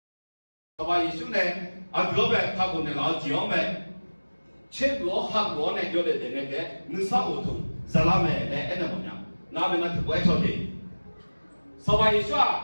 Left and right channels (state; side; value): inverted; both; correlation -1.00